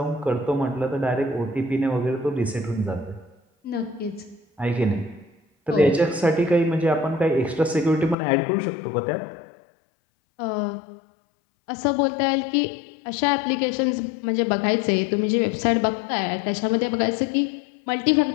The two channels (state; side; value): drops out; right; at 8.2 s